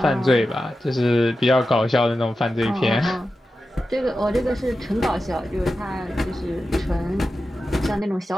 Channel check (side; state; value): both; normal; correlation 0.92